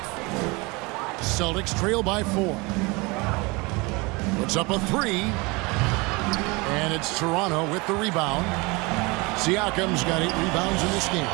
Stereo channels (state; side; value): quieter; left; 26.0 dB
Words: Celtics trail by 4. Puts up a 3. And it's Toronto with the rebound. Siakam's got 8 rebounds in this game.